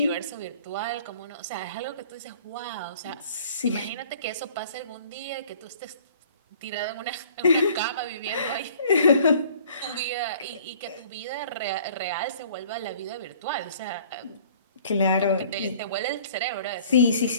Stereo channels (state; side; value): inverted; both; correlation -0.52